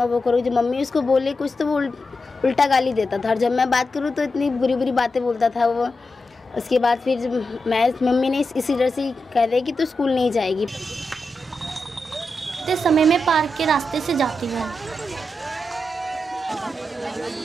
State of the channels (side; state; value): both; normal; correlation 0.88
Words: वो करूँगा। जब मम्मी उसको बोले कुछ तो वो उल्टा गाली देता था, और जब मैं बात करूँ तो इतनी बुरी बुरी बातें बोलता था वो। उसके बाद फिर मम्मी ने इसी डर से कह रहे कि तू स्कूल नहीं जाएगी। इस समय मैं पार्क के रास्ते से जाती हूँ।